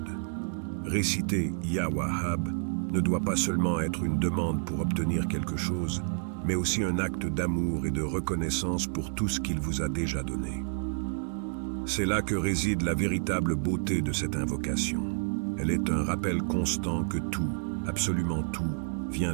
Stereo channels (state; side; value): silent; left; digital silence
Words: Réciter Ya Wahhab ne doit pas seulement être une demande pour obtenir quelque chose, mais aussi un acte d'amour et de reconnaissance pour tout ce qu'il vous a déjà donné. C'est là que réside la véritable beauté de cette invocation. Elle est un rappel constant que tout, absolument tout, vient